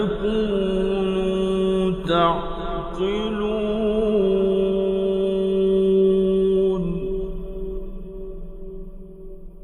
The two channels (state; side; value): identical; both; correlation 1.00